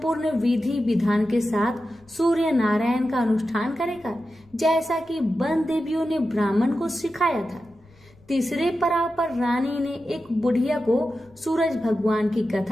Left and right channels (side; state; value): left; noise; rumble, 28 dB below the sound